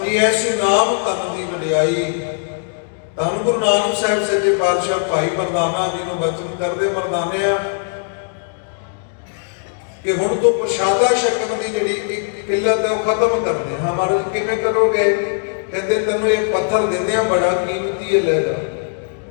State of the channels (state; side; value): silent; right; digital silence